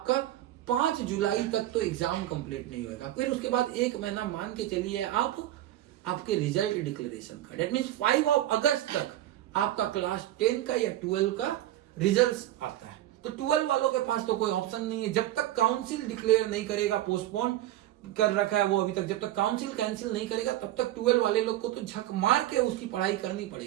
5 जुलाई तक तो एग्जाम कंप्लीट नहीं होगा। फिर उसके बाद 1 महीना मान के चलिए आप आपके रिजल्ट डिक्लेरेशन का। डेट मीन्स 5 अगस्त तक आपका क्लास 10 का या 12 का रिजल्ट आता है। तो 12 वालों के पास तो कोई ऑप्शन नहीं है, जब तक काउंसिल डिक्लेयर नहीं करेगा, पोस्टपोन कर रखा है वो अभी तक, जब तक काउंसिल कैंसिल नहीं करेगा तब तक 12 वाले लोग को तो झक मार के उसकी पढ़ाई करनी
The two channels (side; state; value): left; quieter; 13.9 dB